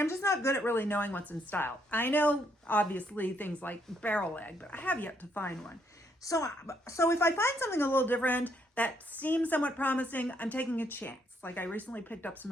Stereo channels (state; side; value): normal; both; correlation 0.72